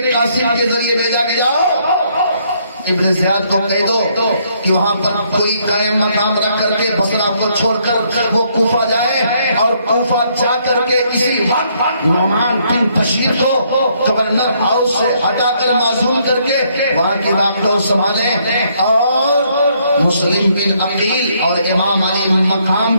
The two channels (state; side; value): inverted; both; correlation -0.70